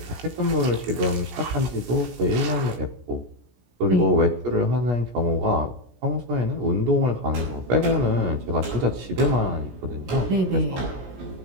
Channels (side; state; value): left; late; 17 ms